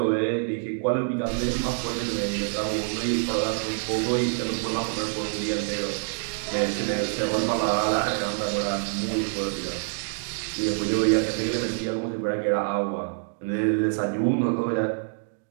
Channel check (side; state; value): left; silent; digital silence